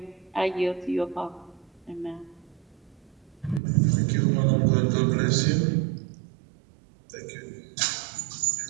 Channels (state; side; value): drops out; left; at 3.6 s